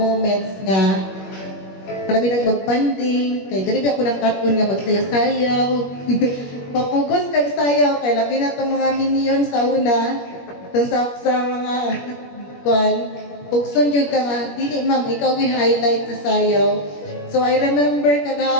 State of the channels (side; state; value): right; late; 21 ms